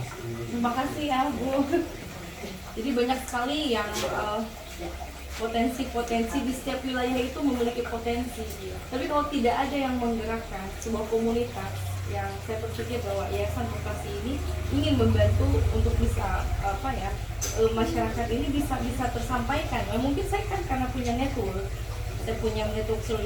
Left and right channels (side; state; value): both; identical; correlation 1.00